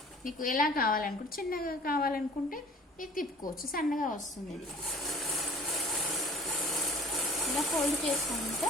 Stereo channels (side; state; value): both; normal; correlation 0.48